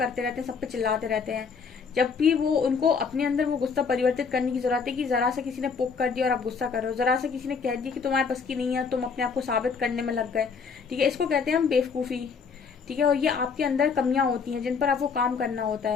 रहते हैं, सब पे चिल्लाते रहते हैं। जब भी वो उनको अपने अंदर वो गुस्सा परिवर्तित करने की जरूरत है कि जरा सा किसी ने पोक कर दिया और आप गुस्सा कर रहे हो, जरा सा किसी ने कह दिया कि तुम्हारे पास की नहीं है, तुम अपने आप को साबित करने में लग गए। ठीक है, इसको कहते हैं हम बेवकूफी। ठीक है, और ये आपके अंदर कमियां होती हैं जिन पर आपको काम करना होता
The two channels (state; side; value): quieter; right; 5.5 dB